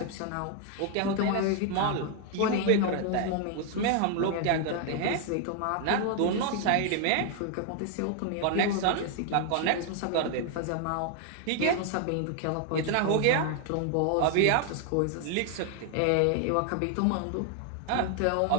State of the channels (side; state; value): both; different; correlation 0.00